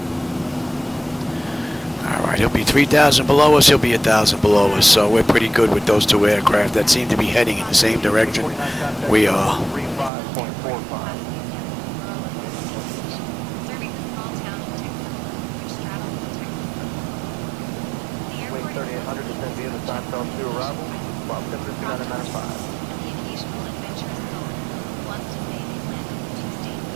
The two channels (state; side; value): drops out; left; at 10.1 s